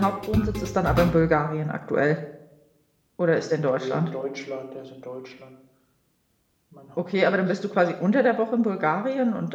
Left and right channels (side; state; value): both; identical; correlation 1.00